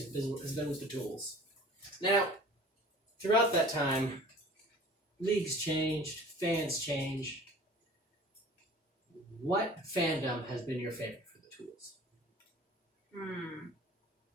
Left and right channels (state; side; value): normal; both; correlation 0.45